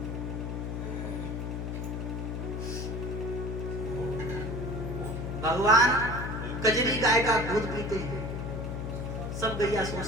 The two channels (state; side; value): noise; left; hum, 4 dB below the sound